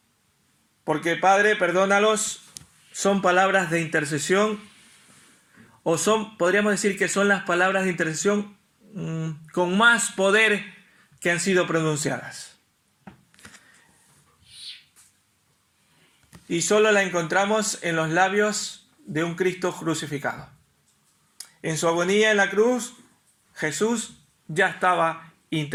Porque Padre, perdónalos, son palabras de intercesión, o podríamos decir que son las palabras de intercesión con más poder que han sido pronunciadas. Y solo la encontramos en los labios de un Cristo crucificado. En su agonía en la cruz, Jesús ya estaba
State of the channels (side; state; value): both; identical; correlation 1.00